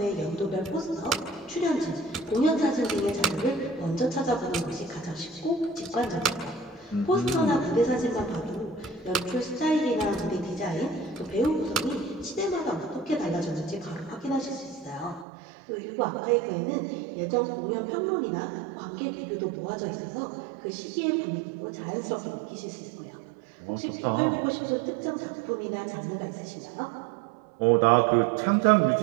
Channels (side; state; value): left; drops out; at 15.2 s